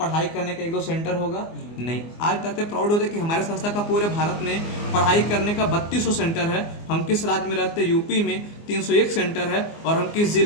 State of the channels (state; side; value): late; right; 24 ms